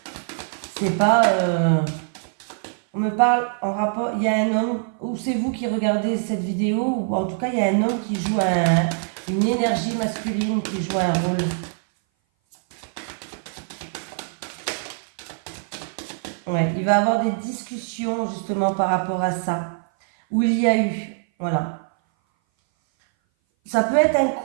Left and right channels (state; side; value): silent; left; 58 dB below the other